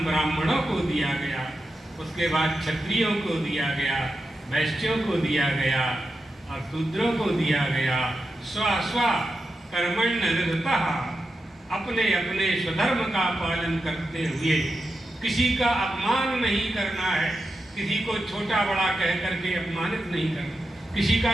ब्राह्मणों को दिया गया, उसके बाद क्षत्रियों को दिया गया, वैश्यों को दिया गया और शूद्रों को दिया गया। स्व कर्मण्य निरतः, अपने अपने स्वधर्म का पालन करते हुए किसी का अपमान नहीं करना है, किसी को छोटा बड़ा कह करके अपमानित नहीं करना, किसी का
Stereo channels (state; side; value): normal; both; correlation 0.89